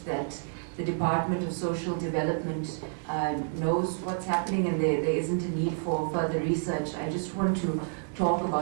that the Department of Social Development knows what's happening and there isn't a need for further research, I just want to talk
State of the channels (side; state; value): left; silent; digital silence